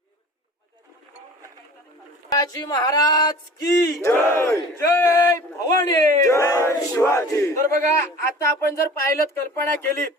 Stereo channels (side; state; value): both; normal; correlation 0.43